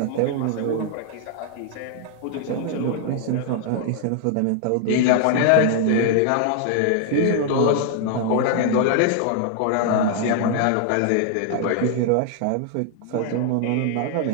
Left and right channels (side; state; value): both; different; correlation 0.00